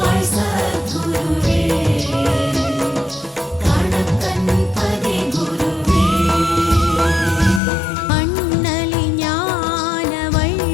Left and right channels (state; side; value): drops out; right; at 7.6 s